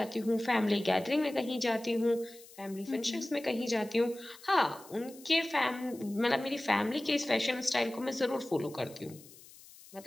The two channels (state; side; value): noise; left; hiss, 21 dB below the sound